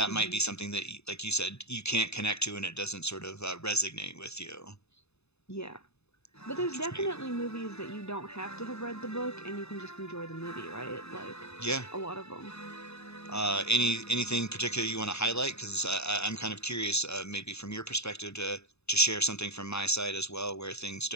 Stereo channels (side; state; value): right; late; 0.80 ms